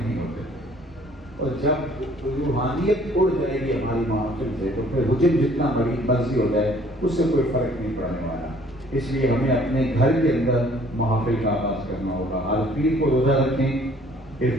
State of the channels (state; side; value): normal; both; correlation 0.57